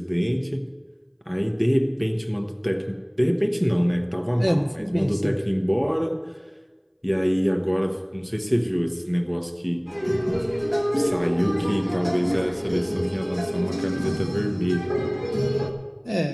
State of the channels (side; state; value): both; identical; correlation 1.00